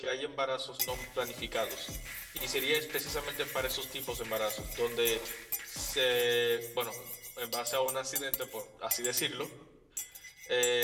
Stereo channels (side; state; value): both; identical; correlation 1.00